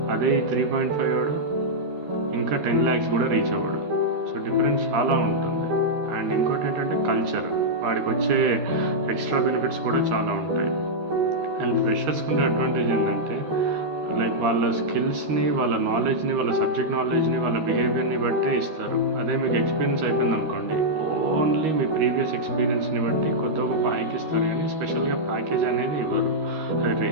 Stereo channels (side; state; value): left; late; 13 ms